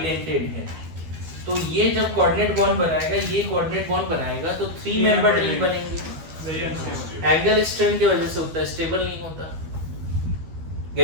है तो ये जब कोऑर्डिनेट बॉन्ड बनाएगा, ये कोऑर्डिनेट बॉन्ड बनाएगा तो 3 मेंबर्ड रिंग बनेंगे। एंगल स्ट्रेन की वजह से होता है, स्टेबल नहीं होता।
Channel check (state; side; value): late; left; 12 ms